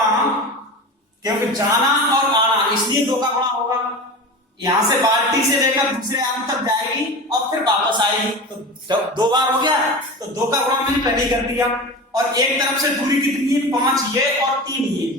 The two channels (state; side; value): normal; both; correlation 0.30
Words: क्योंकि जाना और आना इसलिए 2 का गुणा होगा। यहां से बाल्टी से लेकर दूसरे आलू तक जाएगी और फिर वापस आएगी, तो 2 बार हो गया, तो 2 का गुणा मैंने पहले कर दिया। और एक तरफ से दूरी कितनी है? 5 ये और 3 ये,